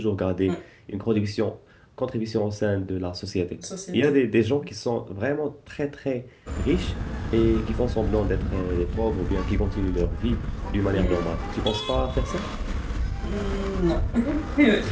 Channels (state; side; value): identical; both; correlation 1.00